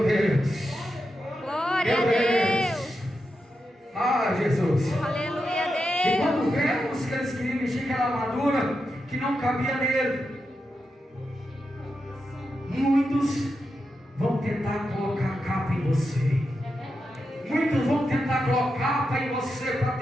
Deus. Glória a Meu Deus. Deus. Ah, Jesus. Aleluia a E Deus. quando vemos que eles queriam vestir aquela armadura que não cabia nele, muitos vão tentar colocar capa em você. Muitos vão tentar colocar capa em você para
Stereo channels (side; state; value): both; normal; correlation 0.87